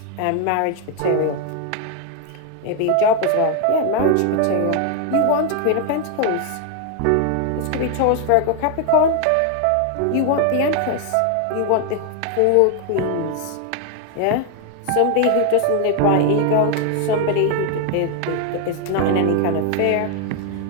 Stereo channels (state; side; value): different; both; correlation 0.01